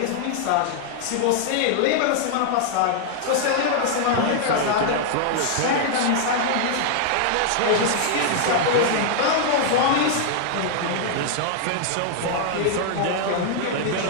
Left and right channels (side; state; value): both; different; correlation 0.00